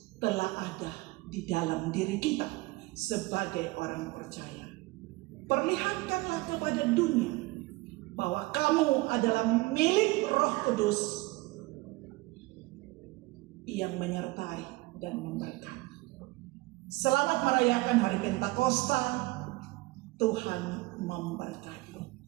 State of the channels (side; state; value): left; quieter; 22.0 dB